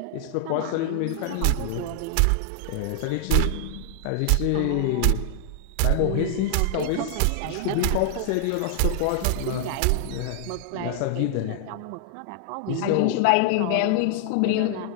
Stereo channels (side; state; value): both; different; correlation 0.00